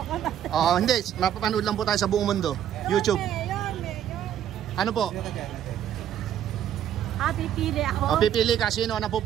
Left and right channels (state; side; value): quieter; left; 10.3 dB